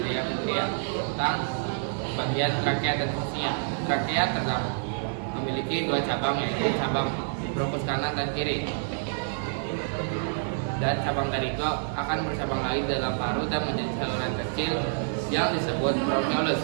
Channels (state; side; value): silent; left; digital silence